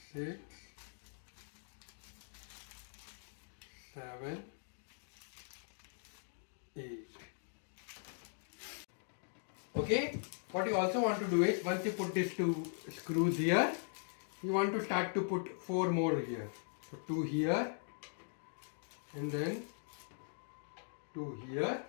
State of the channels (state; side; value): silent; right; digital silence